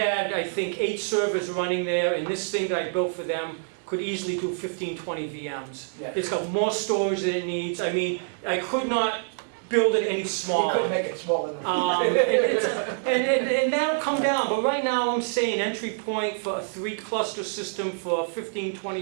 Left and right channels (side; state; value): left; silent; digital silence